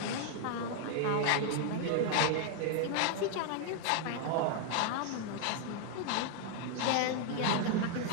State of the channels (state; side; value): different; both; correlation 0.00